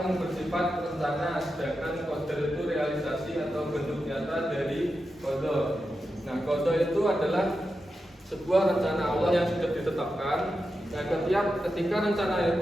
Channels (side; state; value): both; normal; correlation 0.89